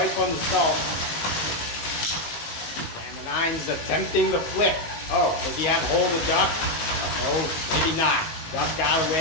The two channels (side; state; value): right; late; 19 ms